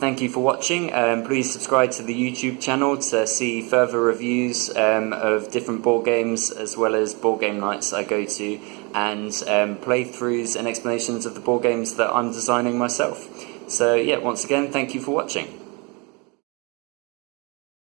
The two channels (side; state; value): left; quieter; 30.1 dB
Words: you for watching. Please subscribe to the YouTube channel to see further reviews of different board games, as well as board game nights I go to, and playthroughs and explanations of the board games that I'm designing myself. So yeah, once again, thank you for watching.